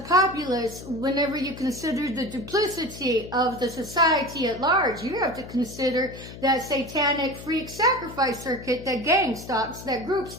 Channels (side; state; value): left; noise; hum, 13 dB below the sound